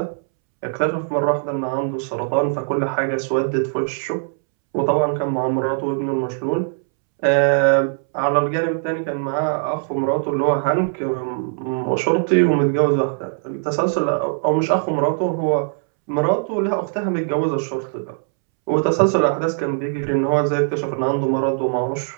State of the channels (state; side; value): silent; left; 65 dB below the other